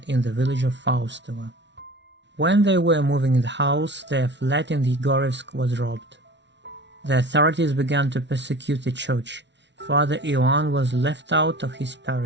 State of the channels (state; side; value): late; left; 0.51 ms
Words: in the village of Faustovo. When they were moving the house, their flat in Yegorevsk was robbed. The authorities began to persecute the church. Father Ioann was left out of his